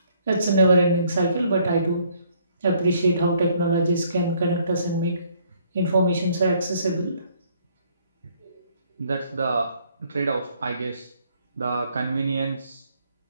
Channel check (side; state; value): both; inverted; correlation -0.64